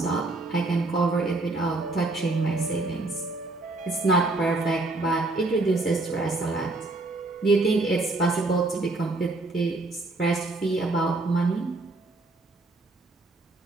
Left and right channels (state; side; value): quieter; left; 3.1 dB